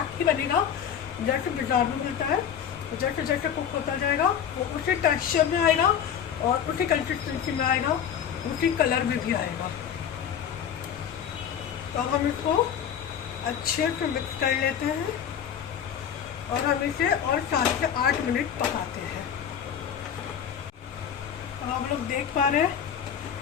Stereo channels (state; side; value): quieter; right; 8.6 dB